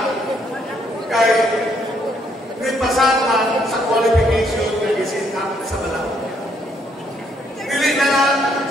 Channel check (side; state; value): both; normal; correlation 0.70